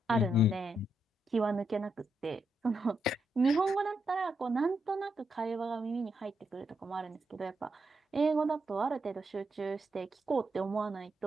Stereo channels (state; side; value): normal; both; correlation 0.81